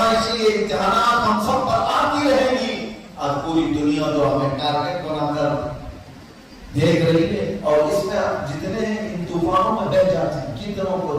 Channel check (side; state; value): both; identical; correlation 1.00